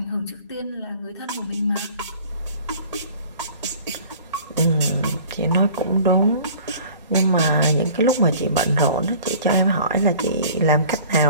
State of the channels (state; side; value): inverted; both; correlation -0.47